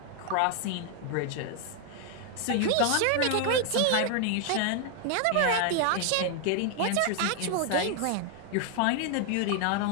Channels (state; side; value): different; both; correlation 0.00